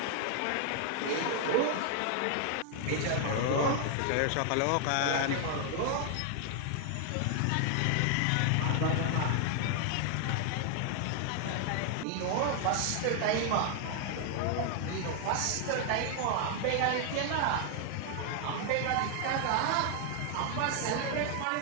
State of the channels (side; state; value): both; different; correlation 0.00